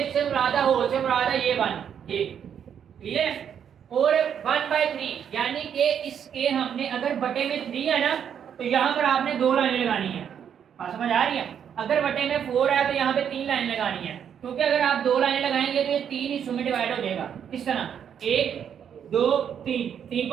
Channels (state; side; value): quieter; left; 8.4 dB